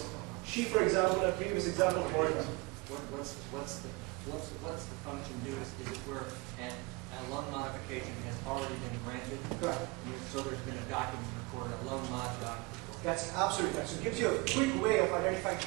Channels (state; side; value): quieter; left; 25.0 dB